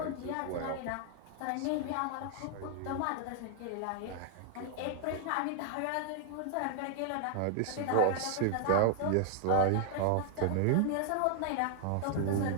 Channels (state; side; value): different; both; correlation 0.00